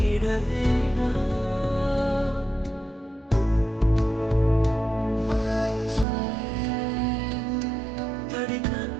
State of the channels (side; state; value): left; drops out; at 6.1 s